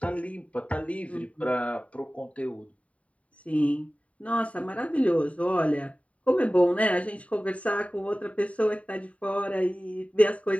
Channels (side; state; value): right; late; 0.066 ms